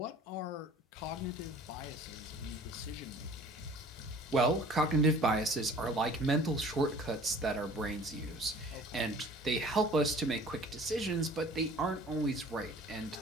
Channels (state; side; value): normal; both; correlation 0.48